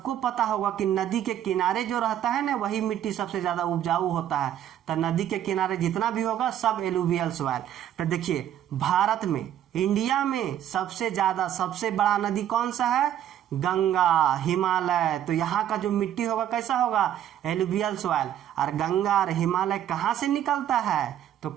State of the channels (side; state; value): left; quieter; 10.8 dB